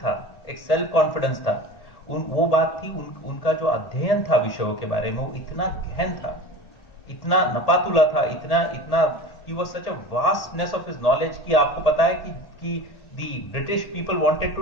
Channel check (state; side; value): late; right; 1.3 ms